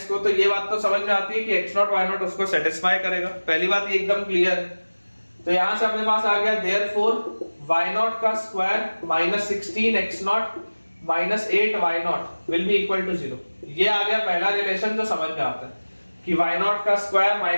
को, तो ये बात तो समझ में आती है कि x0 y0 उसको सेटिस्फाई करेगा। पहली बात ये एकदम क्लियर है। तो यहां से अपने पास आ गया देयरफॉर y0 का square minus 16x0 minus 8y0 will be equal to 0। ये आ गया पहला रिलेशन जो समझ में आता है कि y0 का square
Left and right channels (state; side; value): inverted; both; correlation -1.00